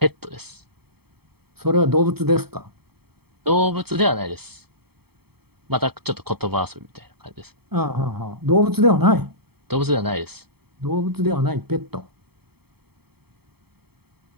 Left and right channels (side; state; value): left; late; 0.96 ms